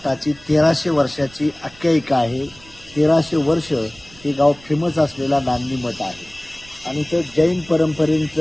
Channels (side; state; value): right; noise; rumble, 23 dB below the sound